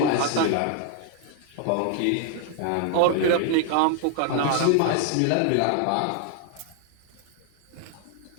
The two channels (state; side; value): different; both; correlation 0.00